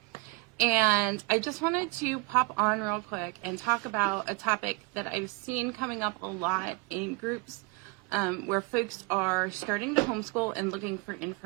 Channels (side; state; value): left; quieter; 24.4 dB